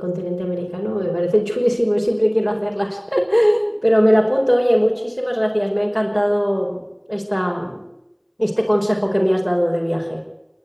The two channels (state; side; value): identical; both; correlation 1.00